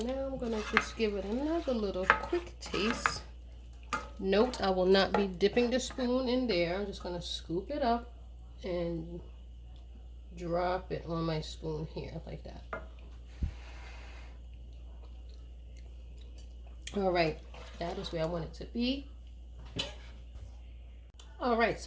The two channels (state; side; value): identical; both; correlation 1.00